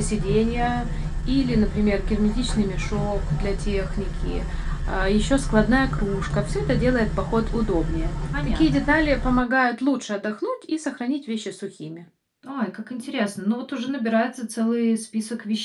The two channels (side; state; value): both; identical; correlation 1.00